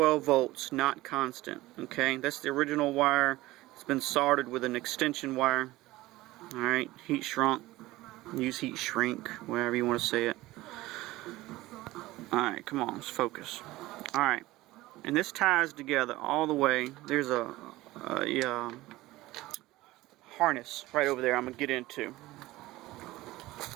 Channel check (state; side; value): quieter; left; 18.1 dB